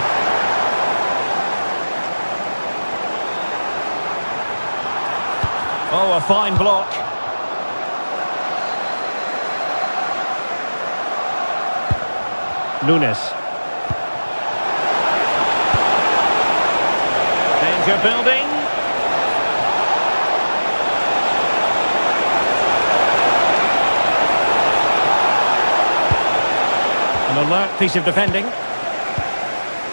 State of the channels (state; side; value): inverted; both; correlation -1.00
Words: Oh, a fine block. Nunes. Danger building. An alert piece of defending.